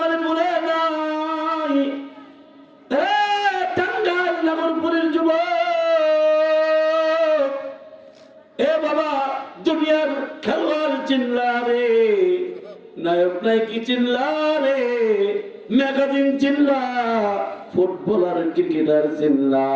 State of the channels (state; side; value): identical; both; correlation 1.00